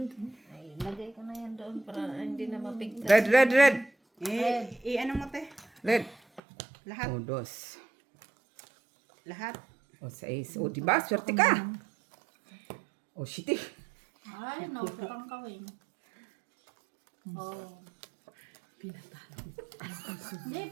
Ay, lagay ko na yan doon para hindi na mapigtas. Red. Ano mo te? Red. Lahat. O, dos. Lahat. O, 6. O, diba? Swerte ka. O, shitty. Ay, nautotong ka, Weng. Oh. Hindi,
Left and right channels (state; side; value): drops out; left; at 6.4 s